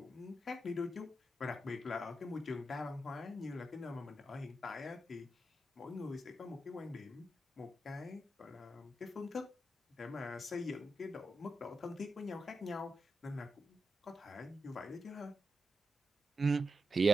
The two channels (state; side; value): normal; both; correlation 0.88